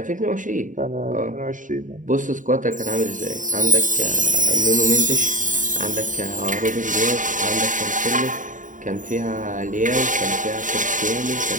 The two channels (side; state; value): left; late; 0.38 ms